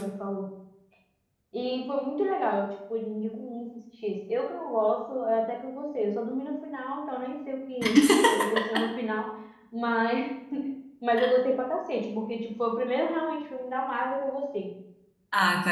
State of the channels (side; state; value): both; identical; correlation 1.00